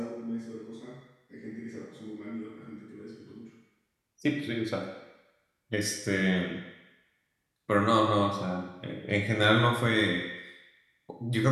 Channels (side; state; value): both; identical; correlation 1.00